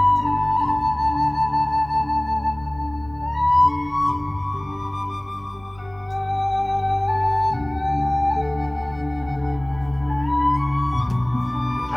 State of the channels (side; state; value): left; noise; hum, 26 dB below the sound